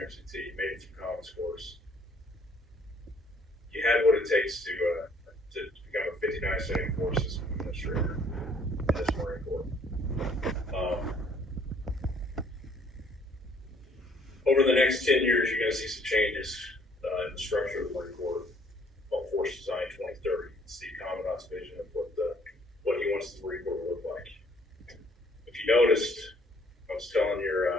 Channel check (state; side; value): normal; both; correlation 0.61